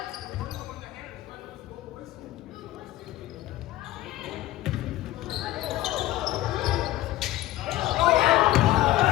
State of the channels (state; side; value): quieter; right; 15.6 dB